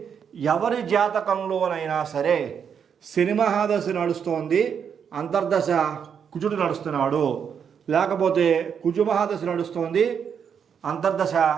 ఎవరి జాతకంలోనైనా సరే శని మహాదశ నడుస్తోంది, అంతర్దశ కుజుడు నడుస్తున్నాడు, లేకపోతే కుజు మహాదశ నడుస్తోంది, అంతర్దశ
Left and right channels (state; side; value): quieter; left; 7.4 dB